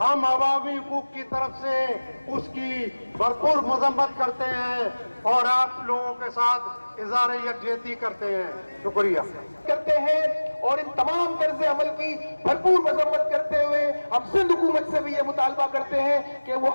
हम अवामी हुकूक की तरफ से उसकी भरपूर मजम्मत करते हैं और आप लोगों के साथ इज़हार यकजहती करते हैं। शुक्रिया करते हैं और इन तमाम तर्ज़ अमल की भरपूर मजम्मत करते हुए हम सिंध हुकूमत से भी ये मुतालबा करते हैं कि वो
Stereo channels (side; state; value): both; inverted; correlation -1.00